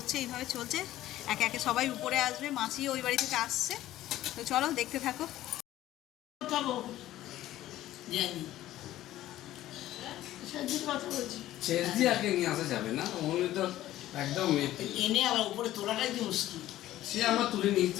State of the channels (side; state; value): right; quieter; 14.3 dB